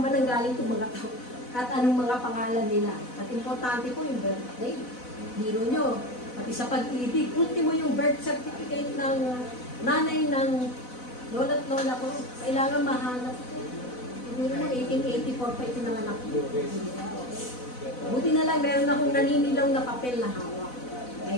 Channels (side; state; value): right; late; 4.0 ms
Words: nanggaling itong mga tao? At anong mga pangalan nila. At importante po yung birthday. Biro nyo. Pati sa pag-ibig, ultimo yung birth certificate ng nanay ng lola at lola ko. Kailangan mahanap ko. Biro mo, 1884 pa itinanganak ko. Buti na lang, meron akong naninilaw na papel na hawak.